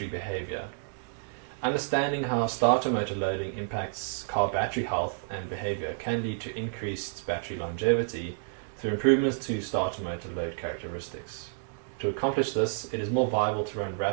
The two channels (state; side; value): silent; left; digital silence